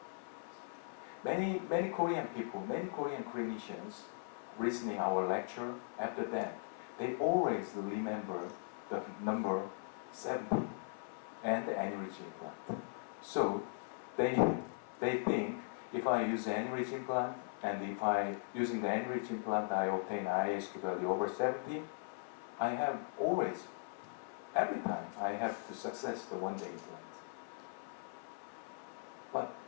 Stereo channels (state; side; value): silent; right; 52 dB below the other